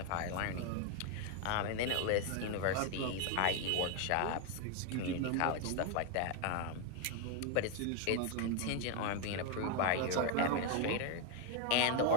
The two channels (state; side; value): different; both; correlation 0.01